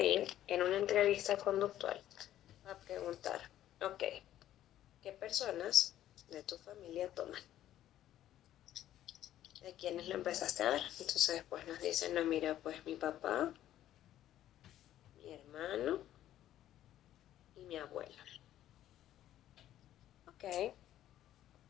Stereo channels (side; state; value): right; quieter; 12.5 dB